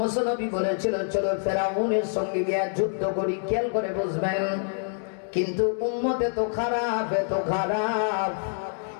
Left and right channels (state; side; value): silent; right; digital silence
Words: নবী বলেছিল চলো ফেরাউনের সঙ্গে গিয়ে যুদ্ধ করি, খেয়াল করে বুঝবেন। কিন্তু উম্মতে তো খারাপ, এত খারাপ,